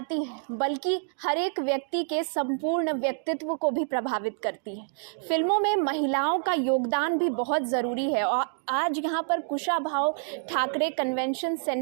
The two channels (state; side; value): silent; left; digital silence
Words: हैं बल्कि हर एक व्यक्ति के संपूर्ण व्यक्तित्व को भी प्रभावित करती हैं। फिल्मों में महिलाओं का योगदान भी बहुत ज़रूरी है और आज यहाँ पर कुशाभाव ठाकरे कन्वेंशन